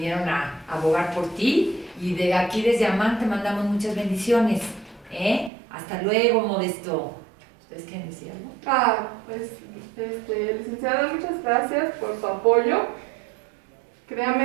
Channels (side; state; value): left; drops out; at 5.5 s